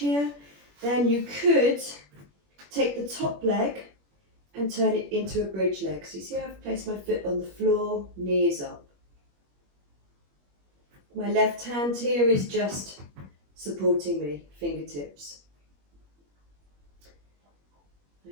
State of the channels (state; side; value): late; left; 21 ms